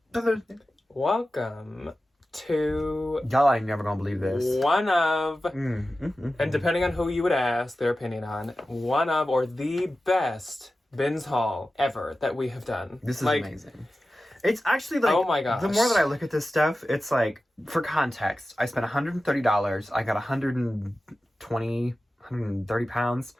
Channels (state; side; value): normal; both; correlation 0.94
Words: Welcome to Y'all ain't never gonna believe this. one of, and depending on who you would ask their opinion on, one of or the best bins haul ever that we have done. This is amazing. It's actually like, oh my gosh. The more that I look at this stuff, it's like, for context, I spent $130. I got 130 pounds